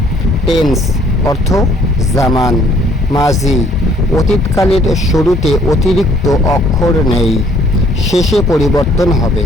টেন্স অর্থ জামান, মাজি অতীতকালের শুরুতে অতিরিক্ত অক্ষর নেই, শেষে পরিবর্তন হবে।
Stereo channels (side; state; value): both; normal; correlation 0.62